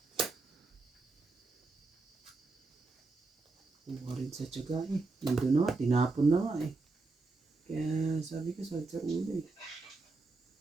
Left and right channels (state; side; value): quieter; left; 3.6 dB